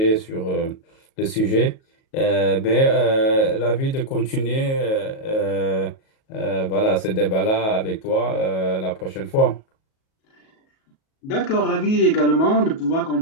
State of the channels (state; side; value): late; right; 37 ms